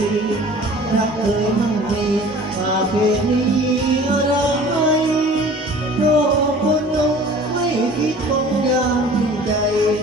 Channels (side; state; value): both; normal; correlation 0.46